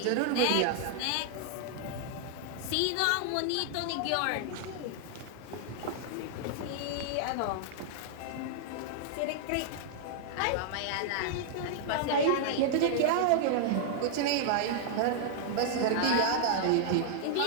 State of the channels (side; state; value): both; different; correlation -0.01